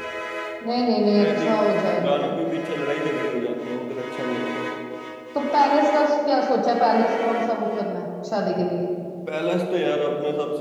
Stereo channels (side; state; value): both; identical; correlation 1.00